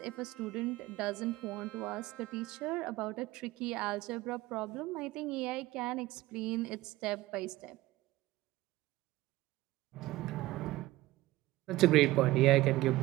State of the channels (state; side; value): quieter; left; 17.8 dB